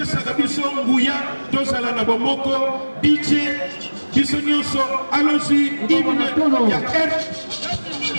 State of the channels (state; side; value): inverted; both; correlation -1.00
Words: biso nguya tozala na bomoko DJ biso nyonso. Allons-y, hymne ya